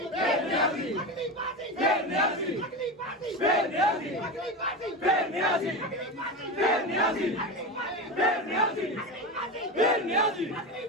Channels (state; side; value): normal; both; correlation 0.21